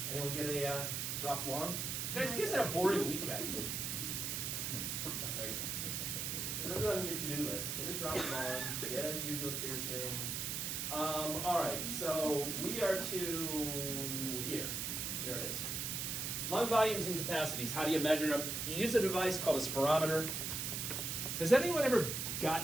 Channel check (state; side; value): noise; right; hiss, 2 dB below the sound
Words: Anyone get a dropped lung? Guys, you guys had a boring weekend. Right. Put it on your to-do list. Get a dropped lung, get a uvula piercing. All right, so we are to here. Here it is. Lung volumes and capacities. How do you measure them? You use a device called a spirometer. Has anyone ever